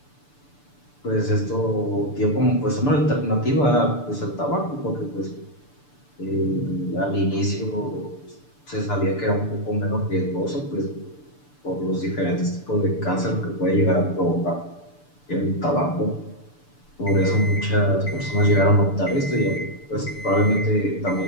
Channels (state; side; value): late; right; 6.9 ms